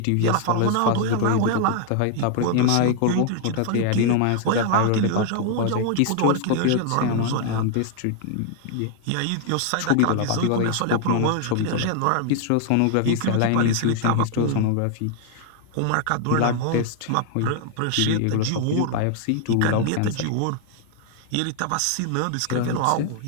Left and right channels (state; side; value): different; both; correlation 0.00